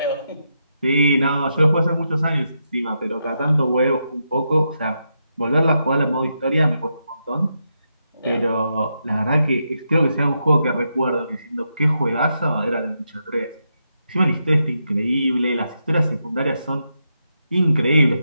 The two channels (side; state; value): both; inverted; correlation -0.84